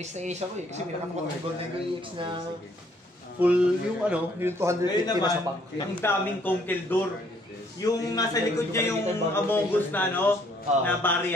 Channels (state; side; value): normal; both; correlation 0.65